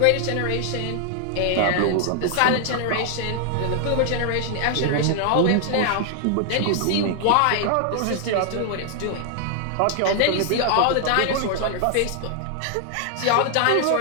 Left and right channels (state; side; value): different; both; correlation 0.00